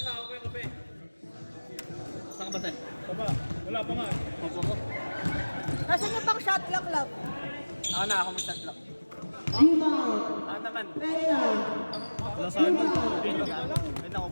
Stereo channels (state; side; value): inverted; both; correlation -1.00